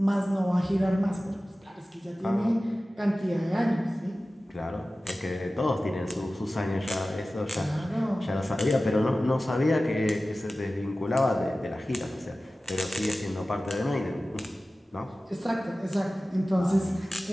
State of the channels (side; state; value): both; normal; correlation 0.96